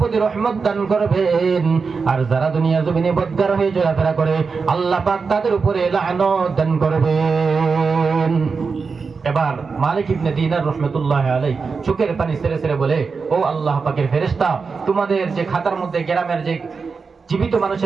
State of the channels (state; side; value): quieter; left; 5.0 dB